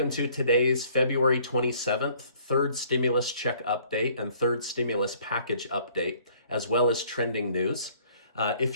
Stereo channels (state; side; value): inverted; both; correlation -0.59